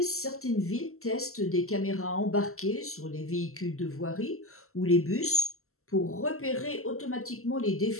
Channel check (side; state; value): right; late; 0.63 ms